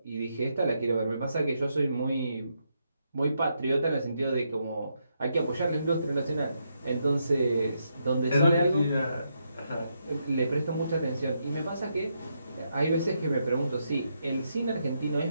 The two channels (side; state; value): both; inverted; correlation -0.80